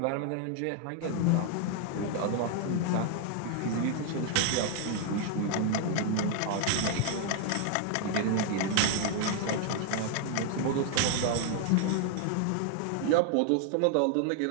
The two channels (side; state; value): both; different; correlation 0.00